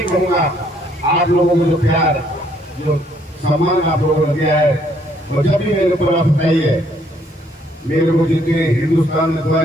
कहूँगा, आप लोगों को जो प्यार, जो सम्मान आप लोगों ने दिया है, और जब भी मेरे ऊपर आप बताइए, मेरे को जितने हिंदुस्तान में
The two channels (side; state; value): both; normal; correlation 0.67